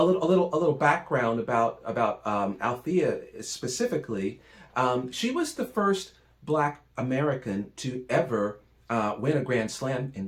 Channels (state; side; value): identical; both; correlation 1.00